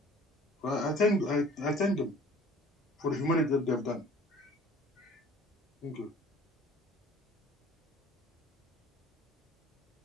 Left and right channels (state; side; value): normal; both; correlation 0.49